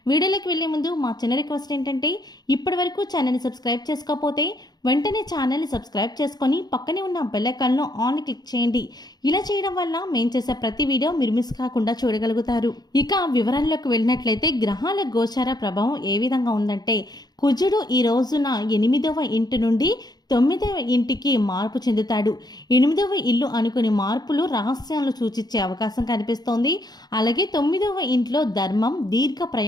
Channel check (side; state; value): right; late; 0.19 ms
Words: వీడియోలోకి వెళ్లే ముందు మా చిన్న రిక్వెస్ట్ ఏంటంటే, ఇప్పటి వరకు ఛానల్ని సబ్స్క్రైబ్ చేసుకోకపోతే వెంటనే ఛానల్ని సబ్స్క్రైబ్ చేసుకొని పక్కనే ఉన్న బెల్ ఐకాన్లో ఆన్ క్లిక్ చేయండి. ఇలా చేయడం వల్ల మేము చేసే ప్రతి వీడియో మీరు మిస్ కాకుండా చూడగలుగుతారు. ఇక వివరాల్లోకి వెళ్ళినట్లయితే గ్రహాల గోచార ప్రభావం ఏ విధంగా ఉందంటే, కుజుడు ఈ రోజున 8వ ఇంటి నుండి 9వ ఇంటికి మార్పు చెందుతాడు. 8వ ఇల్లు అనుకుని మార్పులు రహస్యాలు సూచించే అవకాశం కనిపిస్తోంది. అలాగే 9వ ఇంట్లో ధర్మం, దీర్ఘ